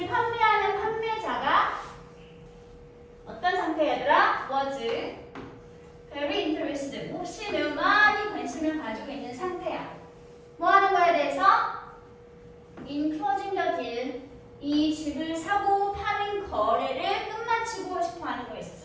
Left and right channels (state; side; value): identical; both; correlation 1.00